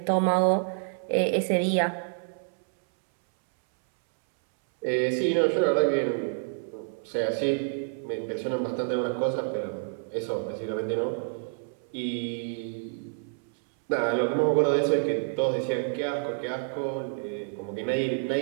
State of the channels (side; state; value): left; silent; 59 dB below the other